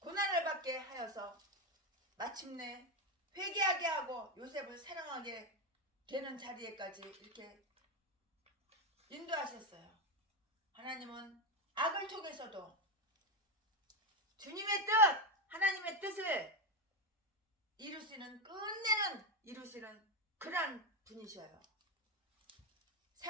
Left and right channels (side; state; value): both; normal; correlation 0.09